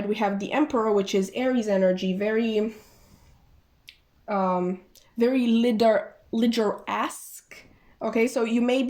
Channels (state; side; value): identical; both; correlation 1.00